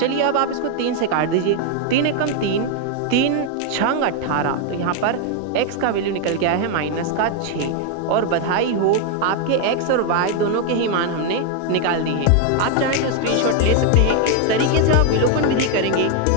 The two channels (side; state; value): both; different; correlation 0.01